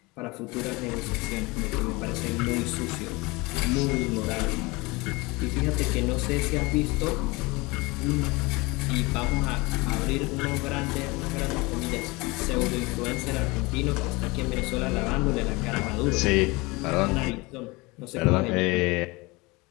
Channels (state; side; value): quieter; right; 24.3 dB